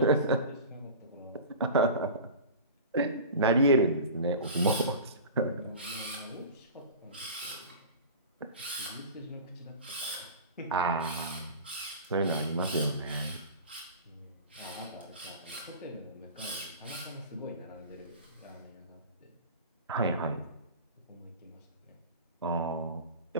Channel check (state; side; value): inverted; both; correlation -0.35